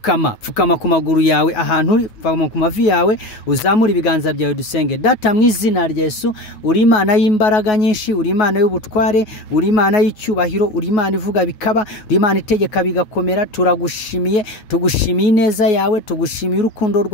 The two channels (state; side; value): late; right; 9.4 ms